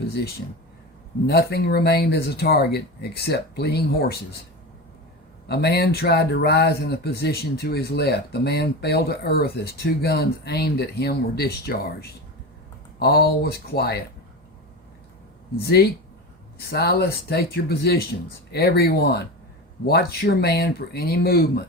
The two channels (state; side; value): normal; both; correlation 0.24